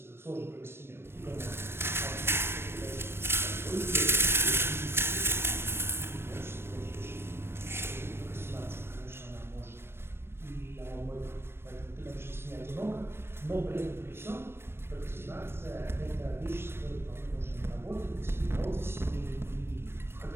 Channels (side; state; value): left; late; 0.12 ms